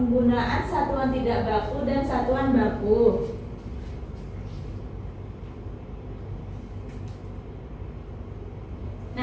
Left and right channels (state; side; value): identical; both; correlation 1.00